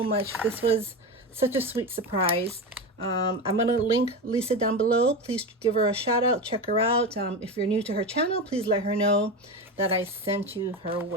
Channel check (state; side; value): normal; both; correlation 0.21